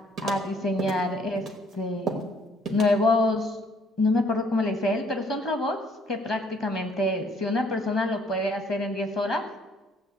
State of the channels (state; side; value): normal; both; correlation 0.63